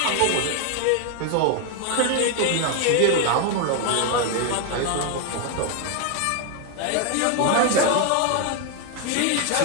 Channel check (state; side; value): different; both; correlation 0.01